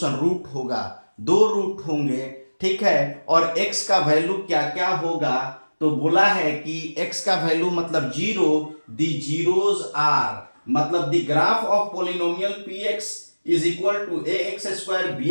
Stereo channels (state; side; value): inverted; both; correlation -1.00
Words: रूट होगा, 2 रूट होंगे, ठीक है। और x का वैल्यू क्या क्या होगा, तो बोला है कि x का वैल्यू मतलब 0, द जीरोज आर, मतलब the graph of polynomial px is equal to ax square